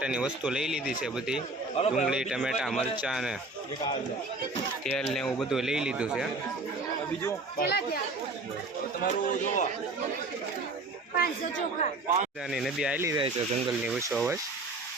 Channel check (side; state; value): left; quieter; 3.1 dB